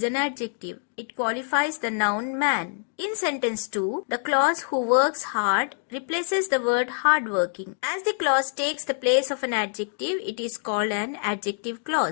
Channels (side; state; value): right; silent; 59 dB below the other